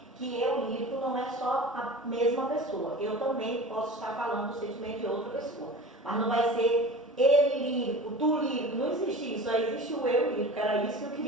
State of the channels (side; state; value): both; normal; correlation 0.37